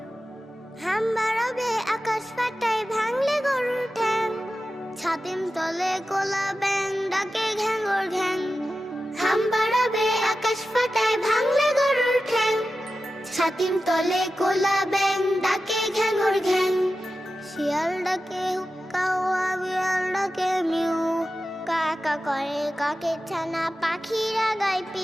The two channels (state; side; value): normal; both; correlation 0.93